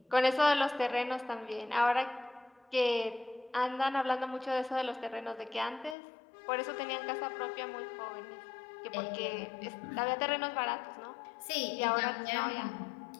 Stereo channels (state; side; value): drops out; right; at 6.0 s